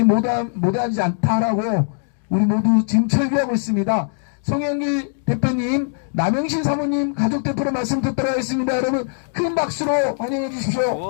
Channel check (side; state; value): right; silent; 58 dB below the other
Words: 못하지 않다라고 우리 모두 지금 철비하고 있습니다. 송영길 대표님, 남영신 사모님 가족 대표로 말씀 듣도록 하겠습니다. 여러분 큰 박수로 환영해 주십시오.